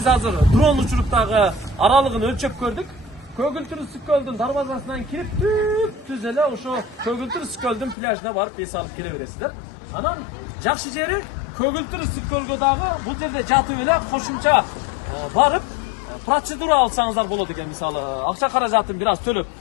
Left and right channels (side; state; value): right; drops out; at 8.0 s